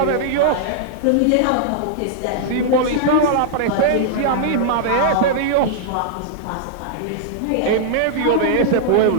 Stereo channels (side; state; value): both; different; correlation -0.01